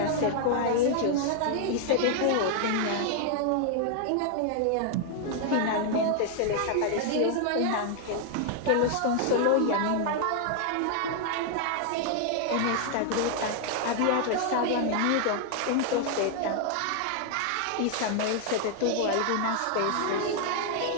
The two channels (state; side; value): different; both; correlation 0.00